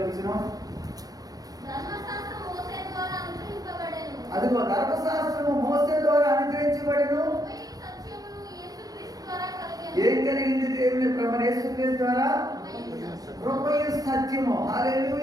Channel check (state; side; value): late; left; 0.18 ms